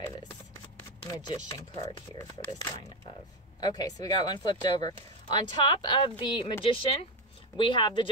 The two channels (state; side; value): normal; both; correlation 0.12